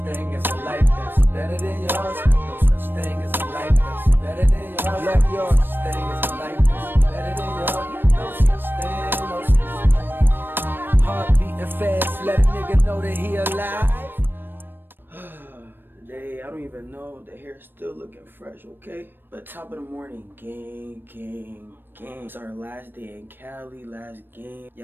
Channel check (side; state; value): left; late; 0.096 ms